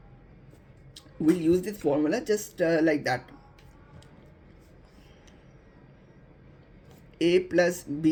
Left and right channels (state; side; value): identical; both; correlation 1.00